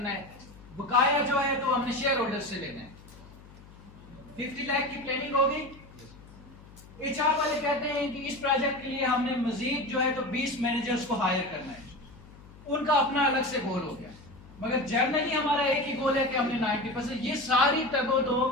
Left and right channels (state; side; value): noise; left; hum, 21 dB below the sound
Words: है, बकाया जो है तो हमने शेयर होल्डर से लेना है। 50 लाख की प्लानिंग होगी। एचआर वाले कहते हैं कि इस प्रोजेक्ट के लिए हमने मजीद जो है तो 20 मैनेजर्स को हायर करना है, उनका अपना अलग से गोल हो गया। मगर जर्नली हमारा एक ही गोल है कि हमने 90%, ये सारी तगो दो,